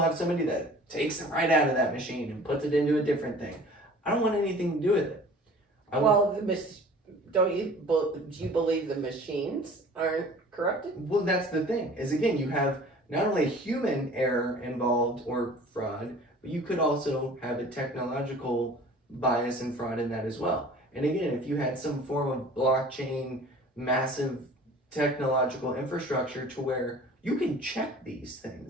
somebody that takes it right out of that machine and puts it into a different thing. I don't want anything to do with it. Do you believe the machines aren't corrupted? Well, that's the thing. Is again, you have not only human error involved or fraud, but you could also have a technological bias and fraud in that as well. And again, if you had some form of blockchain, massive technological infrastructure to where you can check these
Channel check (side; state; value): both; normal; correlation 0.46